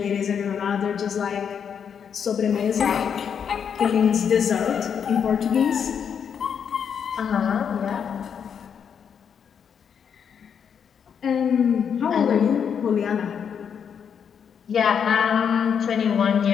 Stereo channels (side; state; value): right; quieter; 7.4 dB